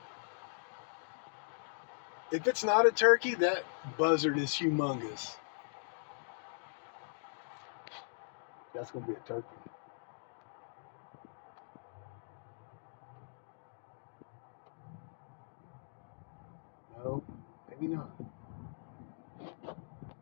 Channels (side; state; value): right; silent; digital silence